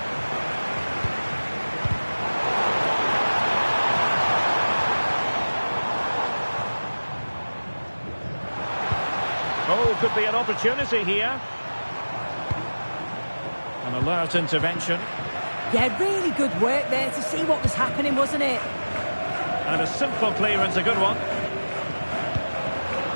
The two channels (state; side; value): inverted; both; correlation -1.00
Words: Oh, could be an opportunity here. An alert intervention. Yeah, really good work there to see what was happening, wasn't it? And a simple clearance, a good one.